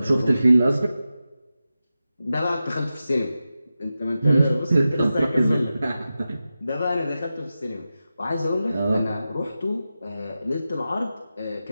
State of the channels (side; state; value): both; inverted; correlation -0.92